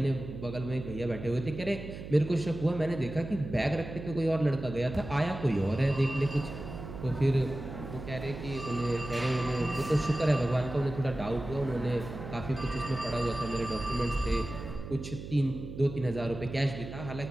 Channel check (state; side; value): noise; right; hum, 10 dB below the sound